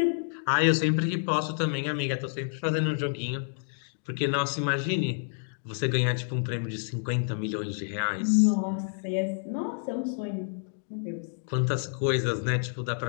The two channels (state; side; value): silent; right; digital silence